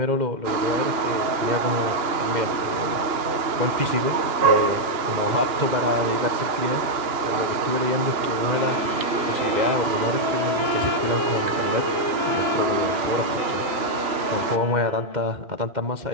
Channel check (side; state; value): left; late; 2.9 ms